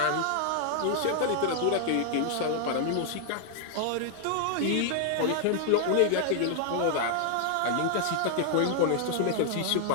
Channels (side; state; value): both; different; correlation -0.01